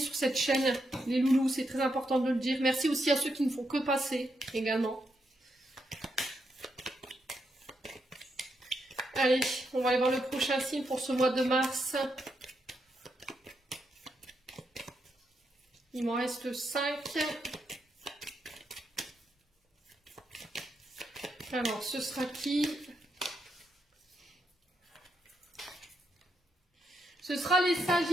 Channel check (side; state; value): both; normal; correlation 0.81